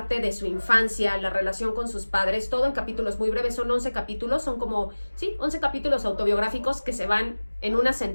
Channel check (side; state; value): both; inverted; correlation -1.00